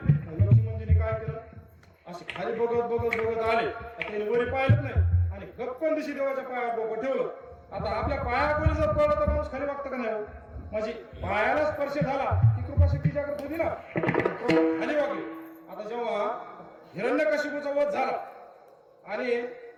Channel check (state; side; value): identical; both; correlation 1.00